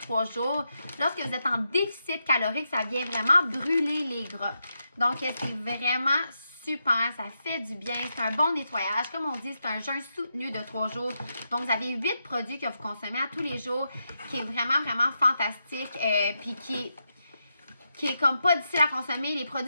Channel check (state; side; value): inverted; both; correlation -0.85